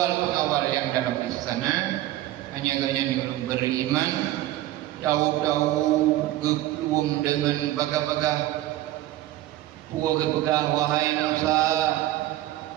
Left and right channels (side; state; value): left; quieter; 15.1 dB